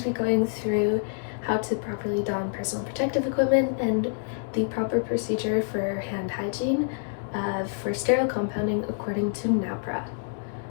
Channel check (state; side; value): silent; right; digital silence